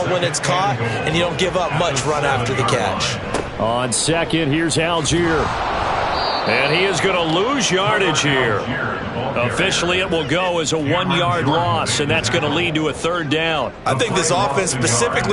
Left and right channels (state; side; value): identical; both; correlation 1.00